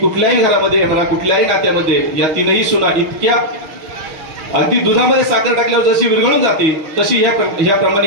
घरामध्ये म्हणा, कुठल्याही नात्यामध्ये या तीनही सुना इतक्या अगदी दुधामध्ये साखर टाकल्यावर जशी विरघळून जाते तशी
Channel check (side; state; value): left; late; 5.9 ms